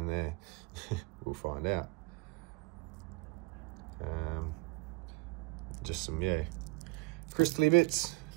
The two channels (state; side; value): quieter; left; 25.8 dB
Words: there. We'll find out. Just some, yeah, crystally bits.